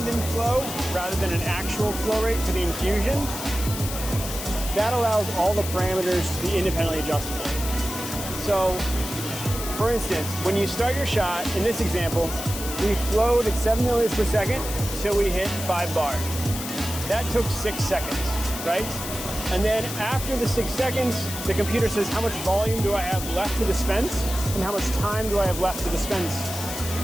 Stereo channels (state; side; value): noise; left; hiss, 7 dB below the sound